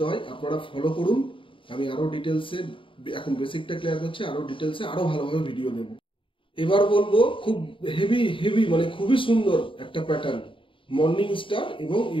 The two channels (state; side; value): late; right; 0.25 ms